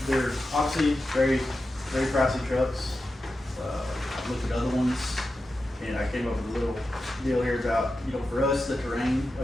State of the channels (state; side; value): normal; both; correlation 0.91